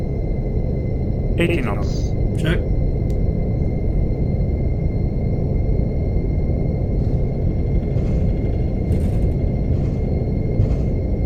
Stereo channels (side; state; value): both; identical; correlation 1.00